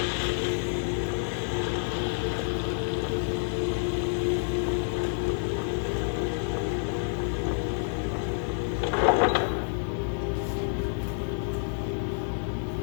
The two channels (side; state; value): right; silent; digital silence